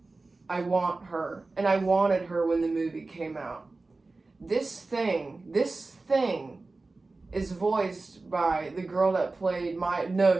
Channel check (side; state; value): left; quieter; 3.5 dB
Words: I want her. And I wanted her when the movie came out. This thing is voiced by the girl that played